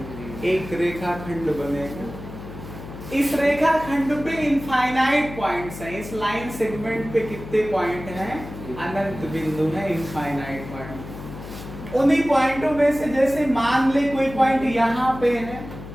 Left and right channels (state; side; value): noise; left; hum, 12 dB below the sound